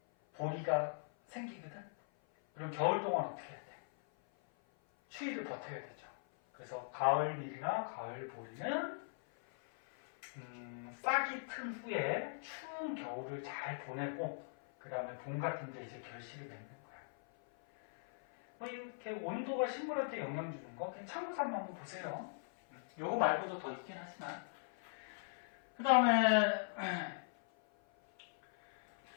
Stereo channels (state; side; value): silent; right; 51 dB below the other